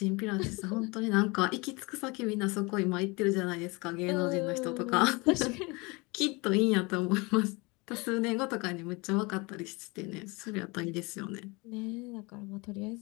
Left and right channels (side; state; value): right; quieter; 26.5 dB